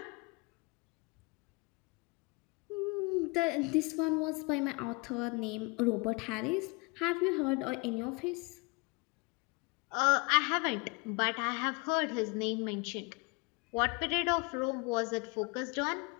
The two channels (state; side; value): quieter; right; 29.1 dB